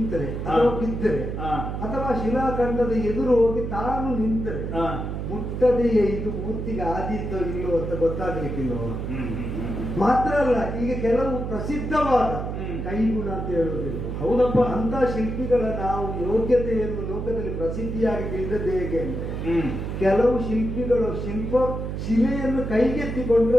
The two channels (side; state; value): right; noise; hum, 4 dB below the sound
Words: ಅಥವಾ ಬಿದ್ದರೆ ಅಥವಾ ಶಿಲಾಖಂಡದ ಎದುರು ಹೋಗಿ ತಾನು ನಿಂತರೆ ಮುಟ್ಟದೆಯೇ ಇದು ಮೂರ್ತಿಗೆ ಆದೀತೋ ಇಲ್ಲೋ ಅಂತ ಗೊತ್ತಾಗ್ಲಿಕ್ಕಿಲ್ಲೋ. ಮಾತ್ರ ಅಲ್ಲ, ಈಗ ಕೆಲವು ಪ್ರಸಿದ್ಧವಾದ ಕೈಗುಣ ಅಂತ ಹೇಳುವುದಿಲ್ಲ. ಹೌದಪ್ಪ, ಅಂತ ಶಿಲ್ಪಿಗಳ ನಾವು ಯೋಗ್ಯತೆಯನ್ನು ಲೋಕದಲ್ಲಿ ಪ್ರಸಿದ್ಧಿಯಾಗಿ ತಿಳಿದದ್ದು ಹೇಗೆ ಅಂದ್ರೆ ಕೆಲವು ಶಿಲ್ಪಿಗಳು ಶಿಲೆಯನ್ನು